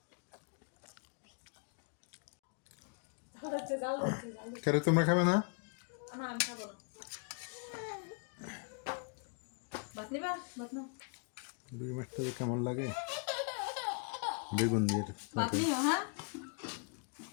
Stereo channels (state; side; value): quieter; right; 37.1 dB